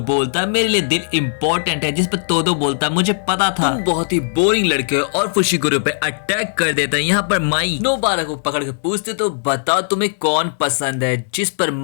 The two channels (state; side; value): silent; right; digital silence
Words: है मेरे लिए दिल इम्पोर्टेंट है, जिस पर तोदो बोलता है मुझे पता था तुम बहुत ही बोरिंग लड़के हो, और फुशिगुरो पे अटैक कर देता है। यहाँ पर माई नोबारा को पकड़ के पूछते तो बताओ तुम्हें कौन पसंद है, जिस पर